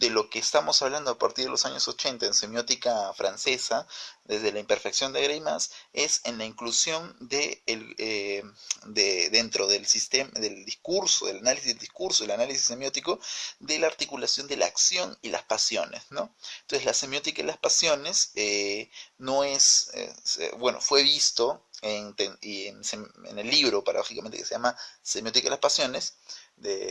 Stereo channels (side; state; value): both; identical; correlation 1.00